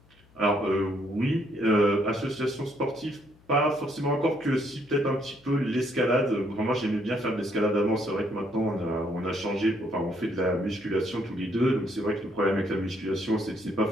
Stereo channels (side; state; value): left; noise; hum, 29 dB below the sound